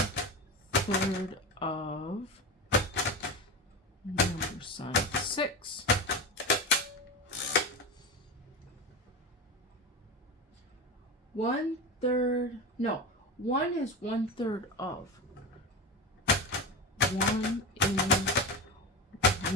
of number sign 6. 1/3. No, 1 is 1/3 of. 1 is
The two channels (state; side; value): normal; both; correlation 0.22